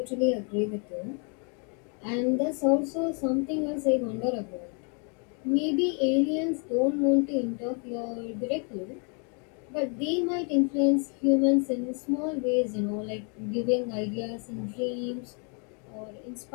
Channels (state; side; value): quieter; right; 38.5 dB